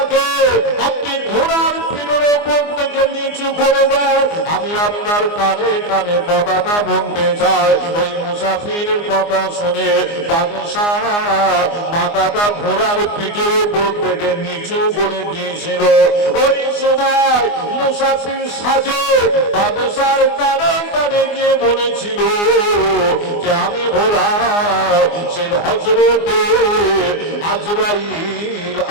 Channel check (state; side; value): late; right; 24 ms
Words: আপনি ঘোড়ার পিঠের উপর থেকে নিচু করে দেন, আমি আপনার কানে কানে কথাটা বলতে চাই। ওই মুসাফিরের কথা শুনে বাদশা মাথাটা ঘোড়ার পিঠের উপর থেকে নিচু করে দিয়েছিল। ওই সময় মুসাফির সাজে বাদশার কানে কানে গিয়ে বলেছিল যে আমি হলাম সেই হযরতে আজরাইল